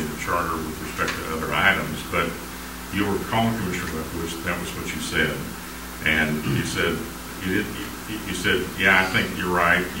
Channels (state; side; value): identical; both; correlation 1.00